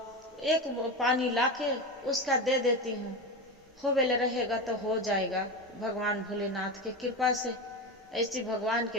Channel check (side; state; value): both; normal; correlation 0.21